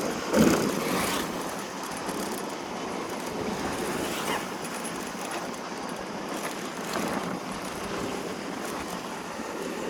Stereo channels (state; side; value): identical; both; correlation 1.00